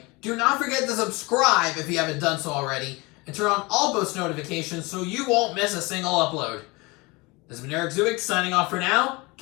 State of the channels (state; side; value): quieter; right; 25.1 dB